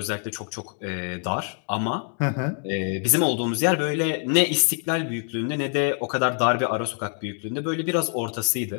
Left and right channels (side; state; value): right; quieter; 38.0 dB